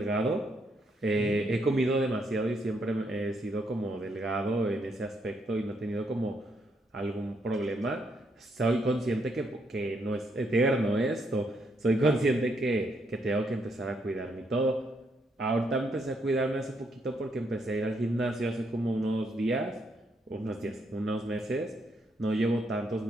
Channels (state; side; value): normal; both; correlation 0.75